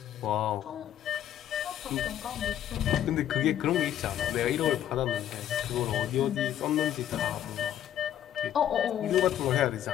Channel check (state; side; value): quieter; right; 11.0 dB